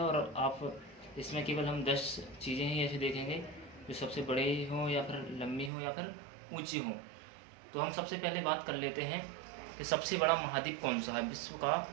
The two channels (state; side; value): drops out; left; at 5.7 s